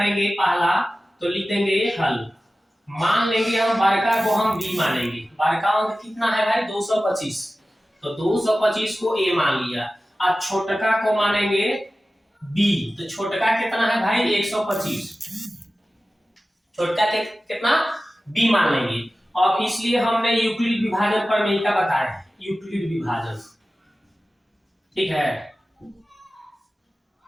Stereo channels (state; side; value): normal; both; correlation 0.95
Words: पहला तो लिख देंगे हल। मान लेंगे हम बड़का को हम बी मानेंगे। बड़का अंक कितना है भाई? 225। तो 225 को ए मान लिया। अब छोटका को मानेंगे बी। तो छोटका कितना है भाई? 125। छोटका कितना? बी मान लेंगे। और इसलिए हमने यूक्लिड विभाजन प्रमेय का बताया है, यूक्लिड विभाजन। ठीक है,